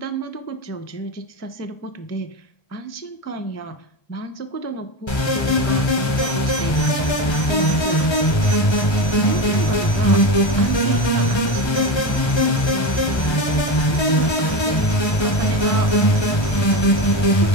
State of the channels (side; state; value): right; late; 1.3 ms